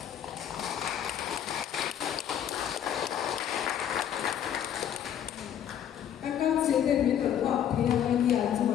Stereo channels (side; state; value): right; quieter; 9.8 dB